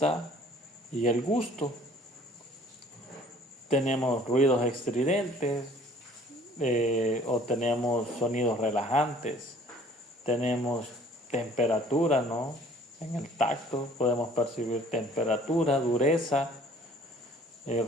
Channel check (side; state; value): both; normal; correlation 0.54